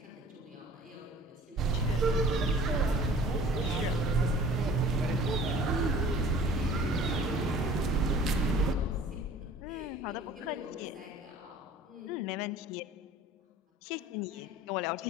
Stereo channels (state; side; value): normal; both; correlation 0.47